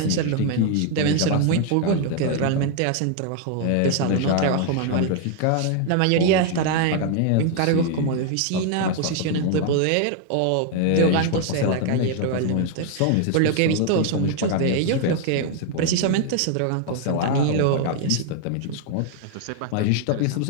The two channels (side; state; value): both; different; correlation 0.00